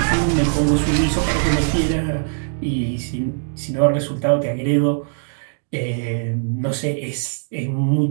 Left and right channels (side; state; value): left; silent; digital silence